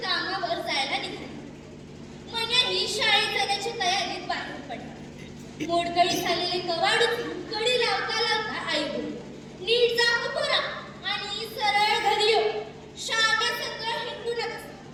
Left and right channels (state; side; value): identical; both; correlation 1.00